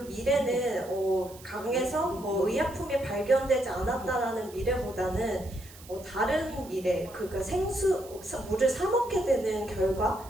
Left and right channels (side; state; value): right; noise; hiss, 20 dB below the sound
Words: 미래는 강에서 의약품이 발견되지 않았다라는 미래보다는 다른 미래, 그러니까 물을 사 먹게 되는